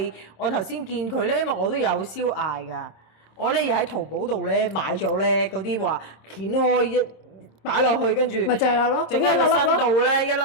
我頭先見佢咧，因為我都有燒艾㗎，我咧又喺淘寶度咧買咗咧嗰啲話掀開一擺落去，跟住咪就係咯，整喺個身度咧一粒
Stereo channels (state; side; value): late; right; 26 ms